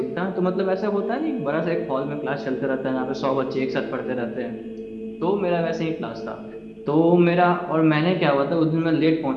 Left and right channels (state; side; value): identical; both; correlation 1.00